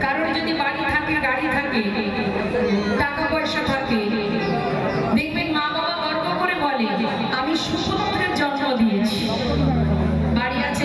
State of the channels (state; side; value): identical; both; correlation 1.00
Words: কারণ যদি বাড়ি থাকে, গাড়ি থাকে, টাকা পয়সা থাকে, দেখবেন মা বাবা গর্ব করে বলে আমি সুপুত্রের জন্ম দিয়েছি, বাড়ি